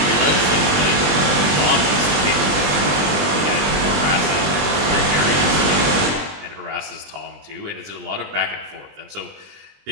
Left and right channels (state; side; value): late; left; 20 ms